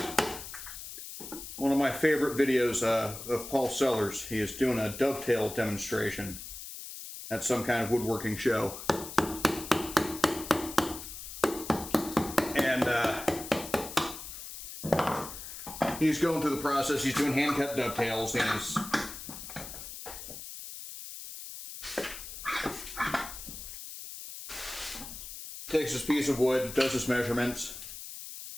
One of my favorite videos of Paul Sellers, he is doing a dovetail demonstration at some kind of woodworking show. And he's going through the process, he's doing hand-cut dovetails, and he's takes this piece of wood, does his measurements,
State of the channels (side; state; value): left; noise; hiss, 10 dB below the sound